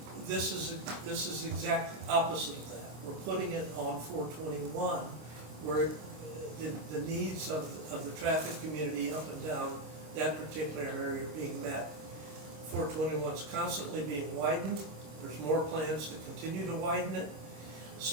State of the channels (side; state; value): left; late; 26 ms